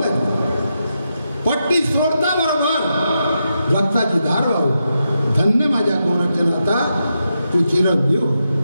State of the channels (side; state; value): both; inverted; correlation -0.85